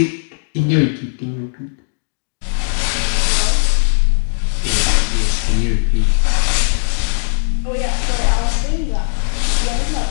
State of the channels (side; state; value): right; silent; digital silence